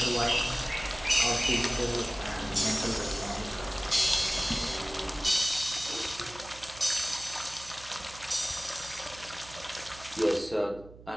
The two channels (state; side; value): noise; right; hum, 19 dB below the sound